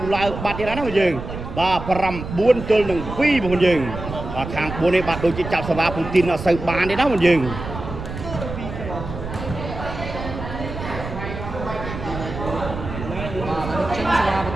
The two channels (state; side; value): noise; right; rumble, 8 dB below the sound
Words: ឡើងបាត់ទៀតហើយណាបងយើងបាទ9ទល់នឹង2បងប្អូនយើងបាទខាង4នេះបាទដូចជាចាប់សេវាពូទីនអត់សូវបានទេណាបងយើង